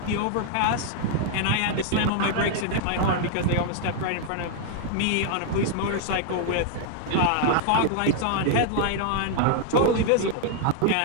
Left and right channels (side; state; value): both; different; correlation 0.00